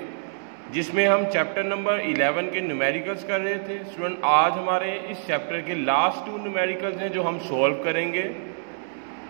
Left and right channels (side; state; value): left; silent; digital silence